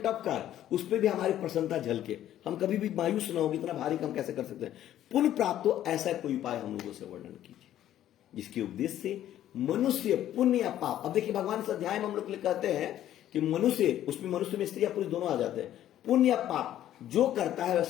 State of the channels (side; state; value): right; quieter; 12.1 dB